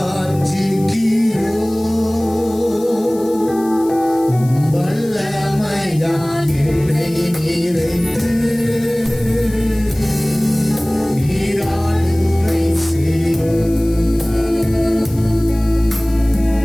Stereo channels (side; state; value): left; noise; hiss, 20 dB below the sound